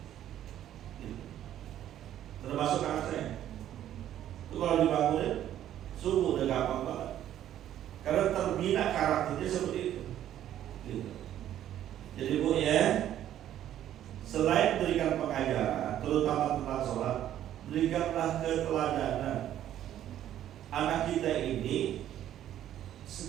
termasuk anak saya. Itu kalau dibangunin subuh udah gampang banget, karena terbina karakternya seperti itu. Jadi bu ya, selain berikan pengajaran, terutama tentang sholat, berikanlah keteladanan. Anak kita ini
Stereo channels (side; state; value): left; quieter; 11.6 dB